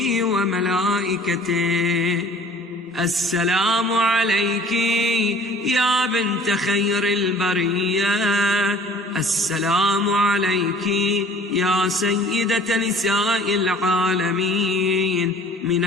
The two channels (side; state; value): both; normal; correlation 0.50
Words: وملائكته، السلام عليك يا بنت خير البرية، السلام عليك يا سيدة نساء العالمين من